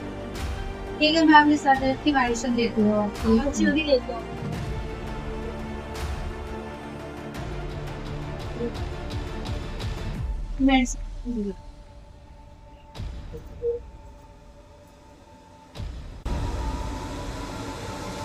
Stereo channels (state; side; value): identical; both; correlation 1.00